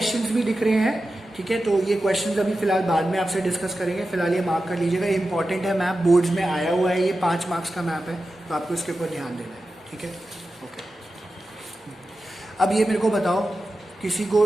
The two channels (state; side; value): normal; both; correlation 0.92